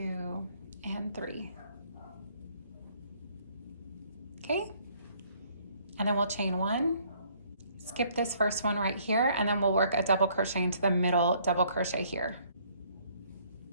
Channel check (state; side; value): inverted; both; correlation -0.63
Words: and 3. Okay, and then we'll chain 1, skip this first one right here, and then we'll work a double crochet into the middle double crochet here.